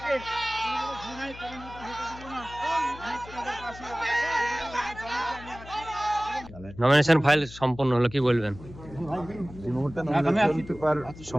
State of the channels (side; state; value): left; noise; hum, 16 dB below the sound